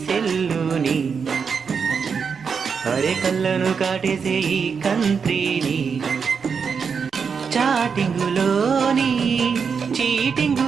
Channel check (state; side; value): quieter; left; 6.0 dB